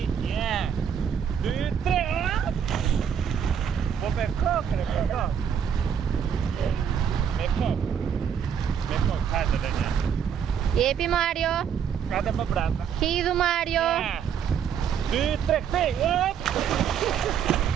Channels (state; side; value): quieter; left; 8.0 dB